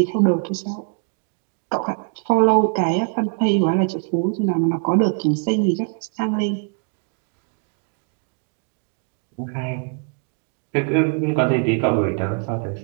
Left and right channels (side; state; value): left; quieter; 38.2 dB